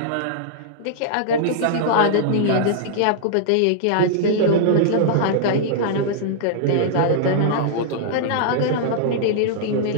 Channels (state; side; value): different; both; correlation -0.02